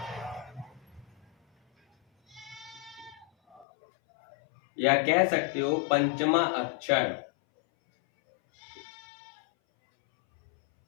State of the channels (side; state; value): right; drops out; at 3.7 s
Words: या कह सकते हो पंचमा अक्षर।